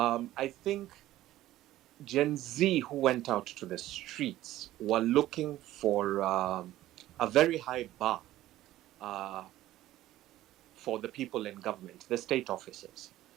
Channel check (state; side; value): quieter; left; 14.8 dB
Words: think Gen Z who went out to the streets were looking for a very high bar for the people in government, the state officers.